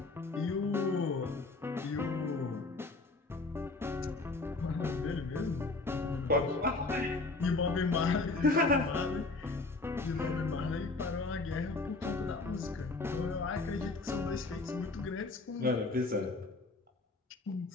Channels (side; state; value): right; quieter; 3.4 dB